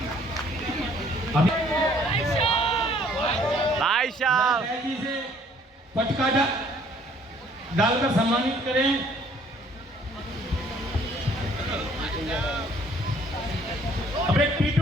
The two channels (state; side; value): normal; both; correlation 0.60